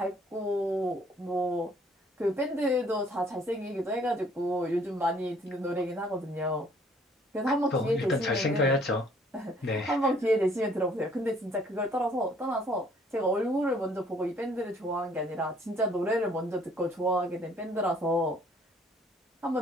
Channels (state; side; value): normal; both; correlation 0.60